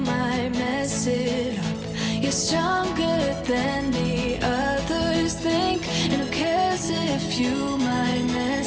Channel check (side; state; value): both; identical; correlation 1.00